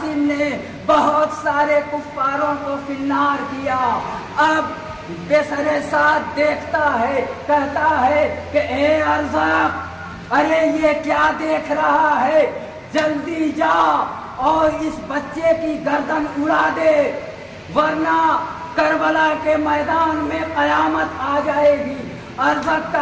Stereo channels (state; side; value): identical; both; correlation 1.00